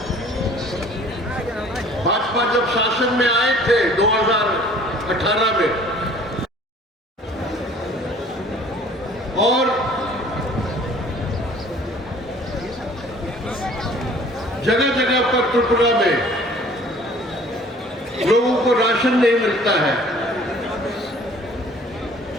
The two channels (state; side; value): normal; both; correlation 0.52